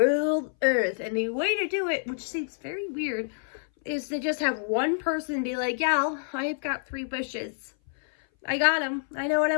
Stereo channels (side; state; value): right; silent; 58 dB below the other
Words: Earth, and the way to do it, which seems very weird, is to just have one person be like, yeah, I've got 3 wishes. I got them. I know what